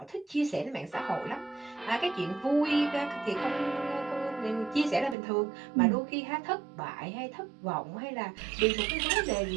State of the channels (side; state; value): left; drops out; at 5.2 s